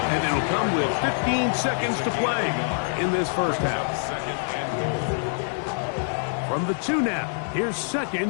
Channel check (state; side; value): silent; right; digital silence